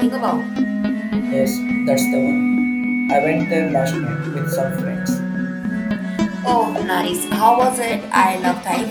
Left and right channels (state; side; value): identical; both; correlation 1.00